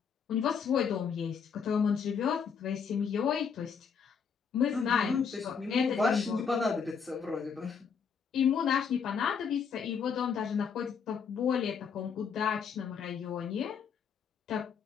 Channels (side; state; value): right; quieter; 6.5 dB